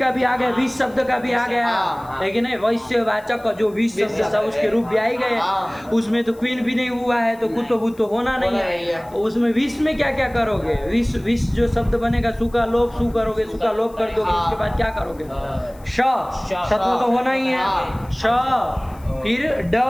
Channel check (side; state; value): left; noise; hiss, 27 dB below the sound